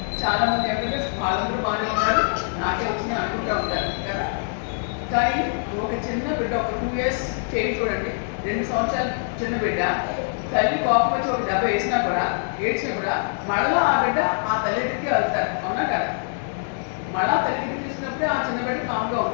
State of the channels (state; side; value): silent; right; digital silence